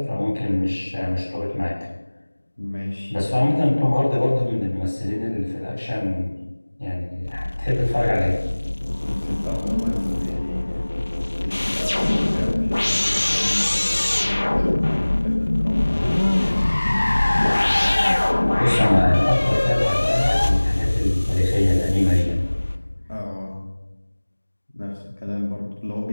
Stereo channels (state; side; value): inverted; both; correlation -1.00